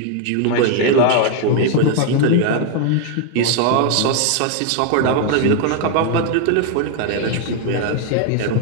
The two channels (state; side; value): different; both; correlation 0.00